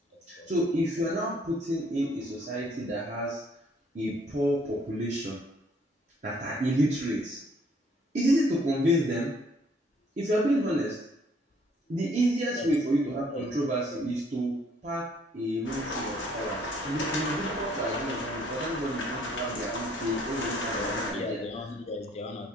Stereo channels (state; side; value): normal; both; correlation 0.63